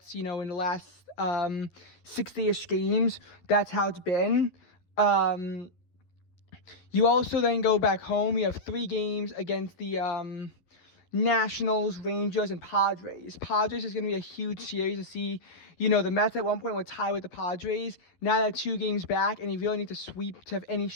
in the last 60-ish games. That's how it's been. You also then go back home. You have 3 games against the Nationals, Rangers, and Padres. Padres is going to be a huge series to see. The Mets at one point were tied with the Padres. Now they're 2 games back, and you really need to sweep to have any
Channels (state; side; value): late; right; 11 ms